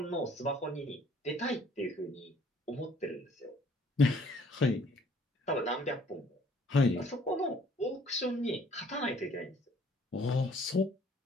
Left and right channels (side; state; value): both; normal; correlation 0.59